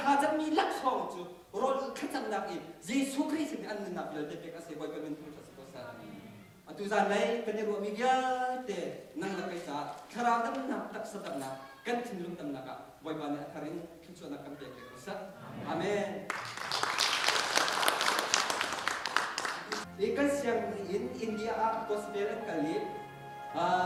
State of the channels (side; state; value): both; identical; correlation 1.00